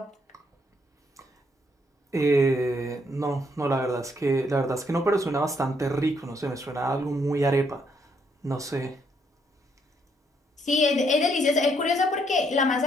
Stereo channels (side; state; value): both; normal; correlation 0.72